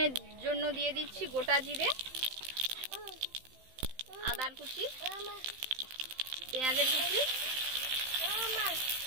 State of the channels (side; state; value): left; late; 16 ms